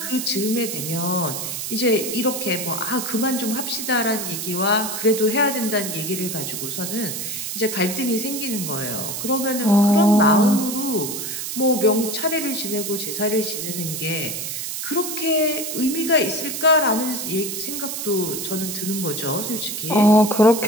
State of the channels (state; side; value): noise; right; hiss, 5 dB below the sound